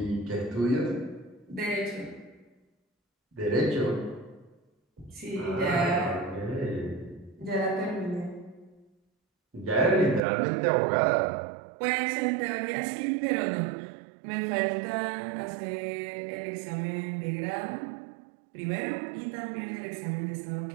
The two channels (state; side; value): drops out; left; at 10.2 s